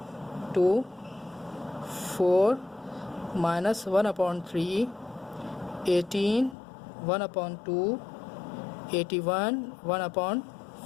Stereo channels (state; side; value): drops out; right; at 6.6 s